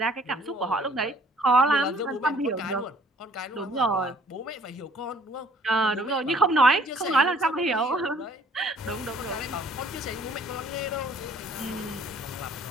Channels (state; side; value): normal; both; correlation 0.57